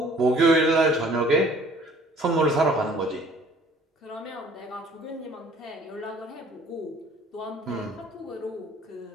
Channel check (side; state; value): both; normal; correlation 0.54